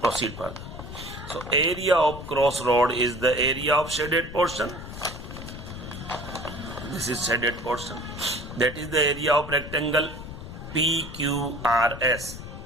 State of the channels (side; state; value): left; noise; rumble, 11 dB below the sound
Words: further. So area of crossroad is the area of shaded portion. This is shaded portion. That is the area of rectangle PQRS